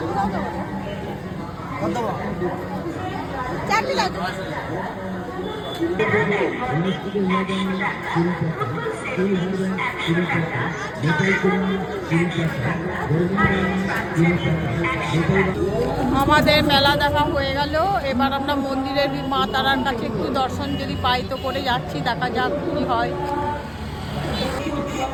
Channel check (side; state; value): both; identical; correlation 1.00